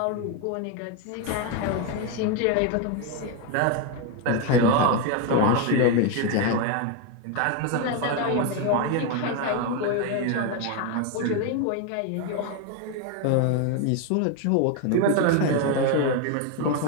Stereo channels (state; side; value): different; both; correlation 0.02